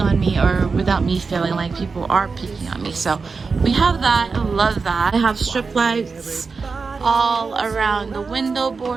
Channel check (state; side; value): quieter; left; 4.7 dB